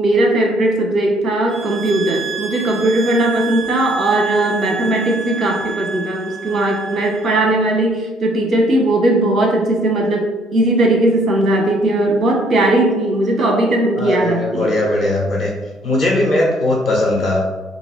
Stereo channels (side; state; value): both; normal; correlation 0.64